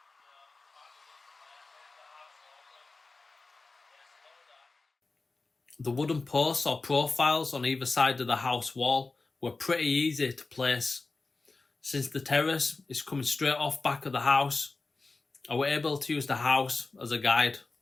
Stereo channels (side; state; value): right; quieter; 3.7 dB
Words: The wooden posts or profiles on either side of the house wall were pretty easy to place. Since the terrace is coming straight off back of the house, I was able to use the house as a guide.